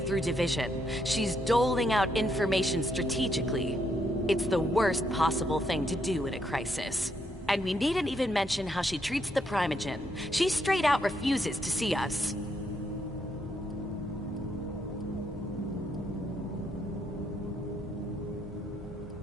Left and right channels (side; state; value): both; normal; correlation 0.75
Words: division. She's doling out information strategically. It's the worst possible thing to do in a crisis. And we needn't even mention how she treats the Primogen. She straight out refuses to see us.